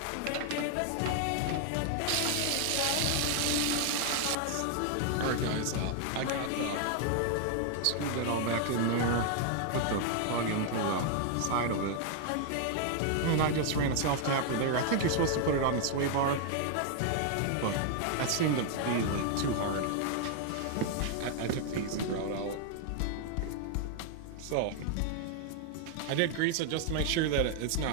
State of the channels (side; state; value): both; different; correlation 0.00